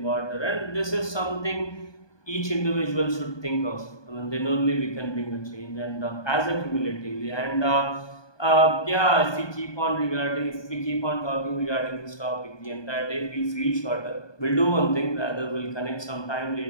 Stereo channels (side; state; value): right; late; 1.2 ms